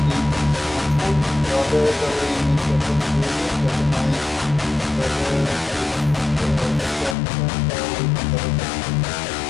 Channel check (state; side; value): drops out; right; at 7.2 s